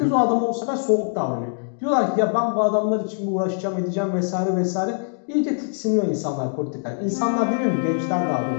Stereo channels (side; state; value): right; silent; 64 dB below the other